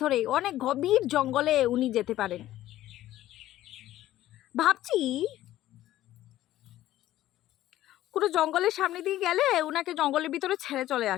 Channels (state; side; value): quieter; right; 14.2 dB